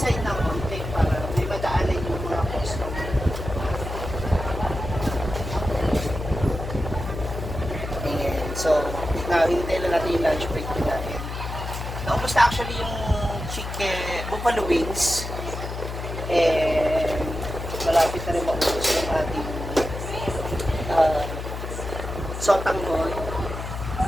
ng konti para may madaanan yung mga customer. And so, hintay lang natin yung lunch break nila. Naubos na actually yung buffalo wings. And malapit na rin maubos yung ating sotanggoy. So,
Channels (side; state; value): left; noise; hum, 6 dB below the sound